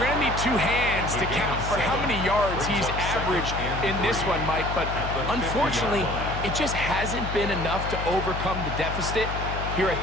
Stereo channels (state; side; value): noise; left; hum, 5 dB below the sound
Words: going to need 2 hands to count for how many yards he's averaged in this one, Mike. But unfortunately, it just hasn't been enough to overcome the deficit here at